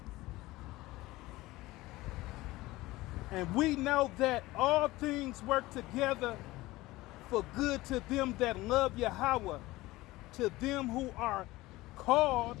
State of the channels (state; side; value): quieter; right; 18.9 dB